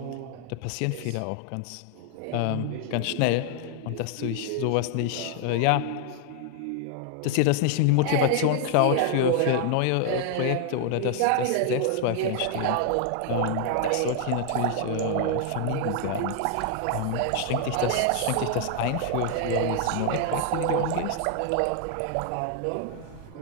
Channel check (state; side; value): different; both; correlation 0.00